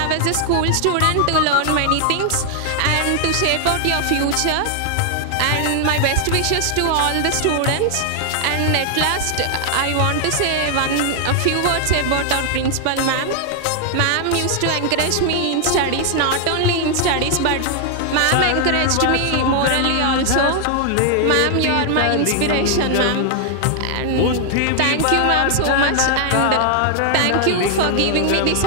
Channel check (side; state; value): both; different; correlation 0.00